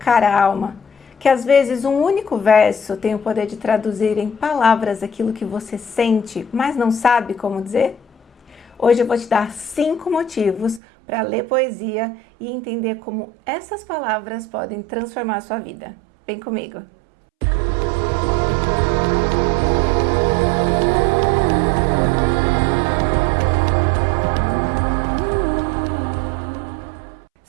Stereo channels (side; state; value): left; drops out; at 10.8 s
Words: a alma? Que às vezes um único verso tem o poder de traduzir em palavras aquilo que você sente, mas não sabe como dizer? Hoje eu vou te dar 5 motivos para ler poesia e entender como essas palavras podem transformar a sua vida. Vem comigo!